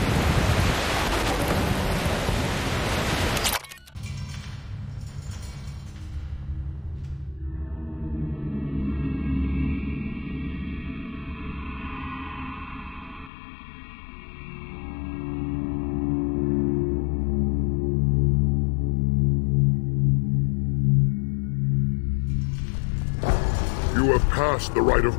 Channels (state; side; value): drops out; right; at 13.3 s